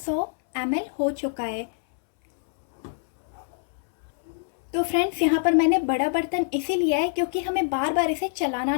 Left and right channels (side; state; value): right; silent; 62 dB below the other